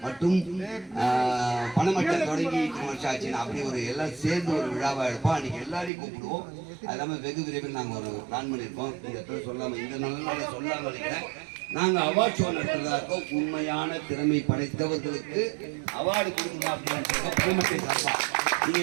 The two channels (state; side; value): drops out; left; at 5.9 s